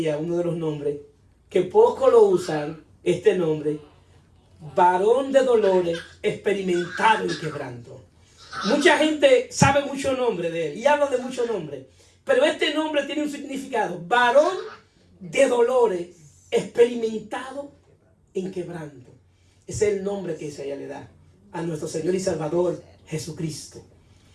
uno de los nombres, que poco lo usan, este nombre, varón de dolores, experimentado en quebranto. Mucha gente sabe mucho nombre de él y habla de muchos nombres, pero este nombre tiene un significado: varón de dolores, experimentado en quebranto. Ese es el nombre que Isaías le da a nuestro Señor y Salvador Jesucristo,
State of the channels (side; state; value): both; identical; correlation 1.00